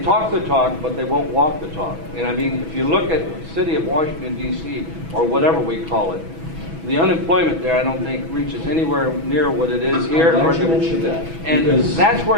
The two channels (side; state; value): left; late; 6.1 ms